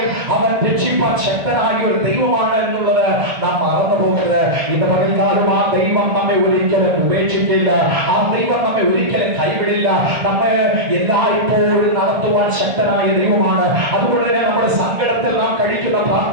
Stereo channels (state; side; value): late; left; 1.5 ms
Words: അവൻ രക്ഷിപ്പാൻ ശക്തനായ ഒരു ദൈവമാണ് എന്നുള്ളത് നാം മറന്നു പോകരുത്. ഇന്ന് പകൽക്കാലം ആ ദൈവം നമ്മെ ഒരിക്കലും ഉപേക്ഷിക്കില്ല, ആ ദൈവം നമ്മെ ഒരിക്കലും കൈവിടില്ല. നമ്മെ എല്ലായ്പ്പോഴും നടത്തുവാൻ ശക്തനായ ദൈവമാണ്. അതുകൊണ്ട് തന്നെ നമ്മുടെ സങ്കടത്തിൽ നാം കഴിക്കുന്ന